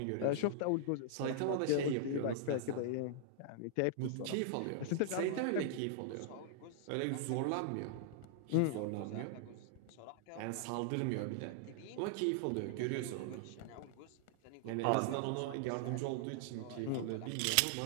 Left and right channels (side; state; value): both; different; correlation -0.01